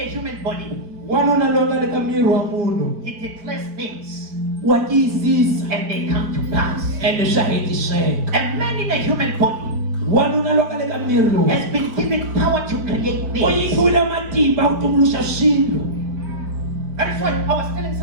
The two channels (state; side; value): late; left; 4.5 ms